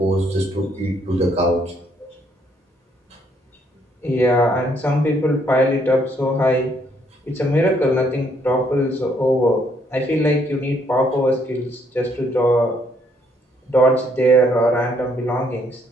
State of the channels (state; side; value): normal; both; correlation 0.69